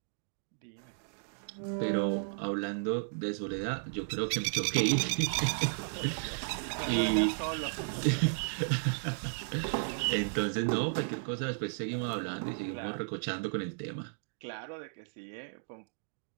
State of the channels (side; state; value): left; silent; digital silence